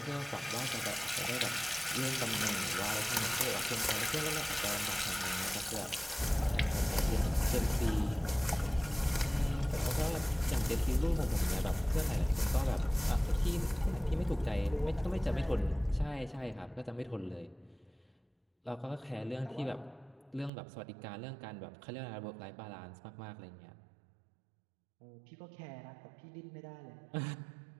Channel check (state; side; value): drops out; left; at 20.5 s